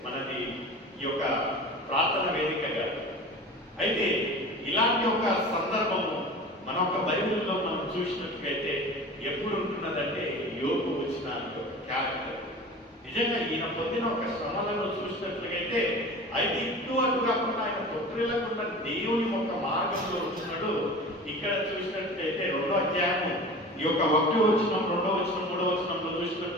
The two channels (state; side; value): normal; both; correlation 0.37